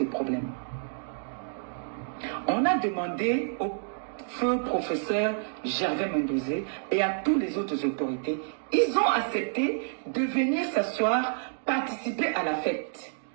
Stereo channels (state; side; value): silent; left; digital silence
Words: problèmes. On a demandé au feu professeur Gervais Mendozé et à tous les autres autorités, ils ont accepté de venir s'asseoir, participer à la fête.